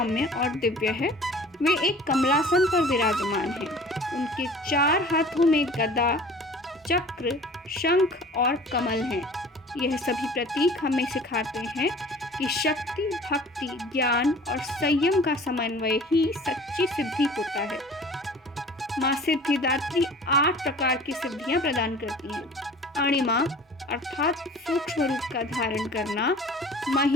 और दिव्य है। वे एक कमलासन पर विराजमान हैं। उनके 4 हाथों में गदा, चक्र, शंख और कमल हैं। यह सभी प्रतीक हमें सिखाते हैं कि शक्ति, भक्ति, ज्ञान और संयम का समन्वय ही सच्ची सिद्धि होता है। माँ सिद्धिदात्री 8 प्रकार की सिद्धियां प्रदान करती हैं। अणिमा अर्थात सूक्ष्म रूप का धारण करना,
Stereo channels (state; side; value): normal; both; correlation 0.45